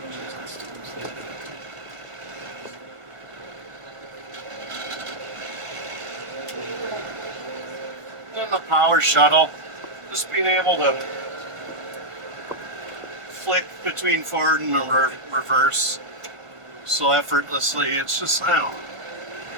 And the power shuttle, just being able to flick between forward and reverse so effortlessly, it's just, I don't know.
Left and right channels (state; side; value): late; left; 1.5 ms